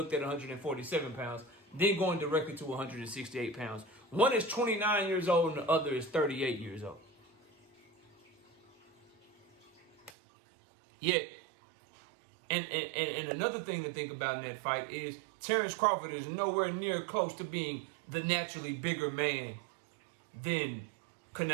at 147 pounds, then going directly to 168 pounds. One is 29 years old and the other is 38 years old. Yeah. And another thing to think about in that fight is Terrence Crawford is nowhere near close to being the naturally bigger man than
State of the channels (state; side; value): drops out; left; at 10.1 s